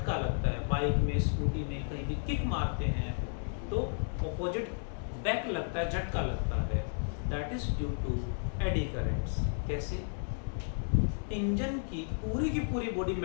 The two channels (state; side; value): silent; right; digital silence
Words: लगता है। बाइक में, स्कूटी में कहीं भी किक मारते हैं तो ऑपोजिट बैक लगता है, झटका लगता है। That is due to eddy currents. कैसे? इंजन की पूरी बॉडी